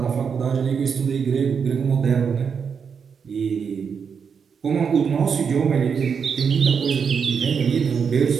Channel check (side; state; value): left; quieter; 6.4 dB